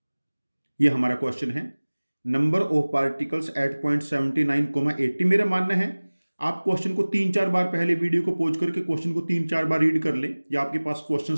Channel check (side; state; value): both; inverted; correlation -1.00